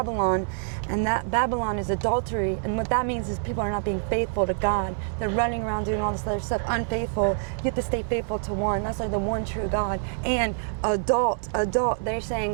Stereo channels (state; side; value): silent; left; digital silence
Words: and that Babylon is adultery. And what that means is people are not being faithful to God. They're running around doing all this other stuff, unfaithful. You have to stay faithful to one. That's like the one true God. And adult. They're